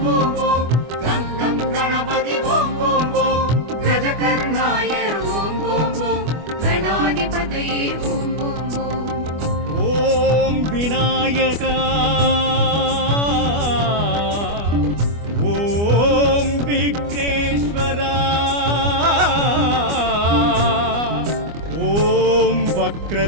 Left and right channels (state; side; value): late; left; 25 ms